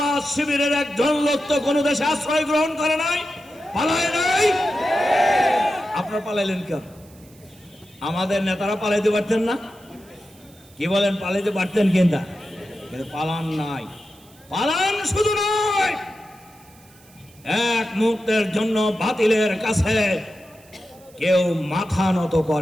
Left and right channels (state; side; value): noise; right; hiss, 27 dB below the sound